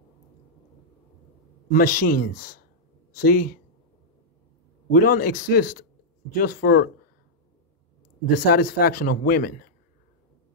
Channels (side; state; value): both; normal; correlation -0.08